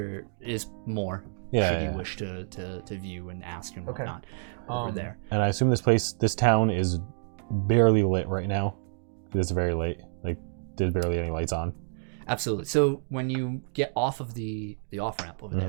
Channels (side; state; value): left; silent; digital silence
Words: is more should you wish to view and ask and whatnot over there. And I assume this town is barely lit right now. It's very late. Like there's barely any lights on. Absolutely. So when you get off of the off ramp over